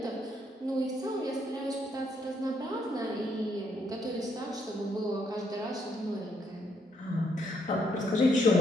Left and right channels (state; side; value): normal; both; correlation 0.73